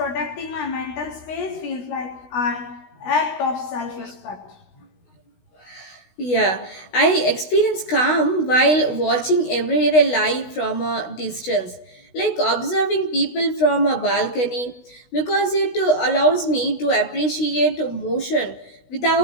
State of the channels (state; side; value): late; right; 16 ms